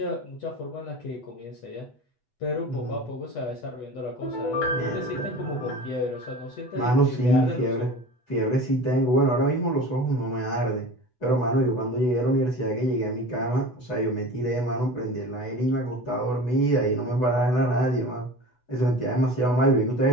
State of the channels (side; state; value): right; late; 8.0 ms